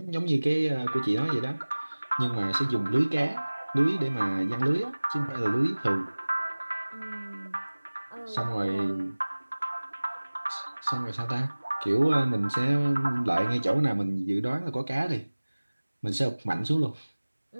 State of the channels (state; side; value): inverted; both; correlation -1.00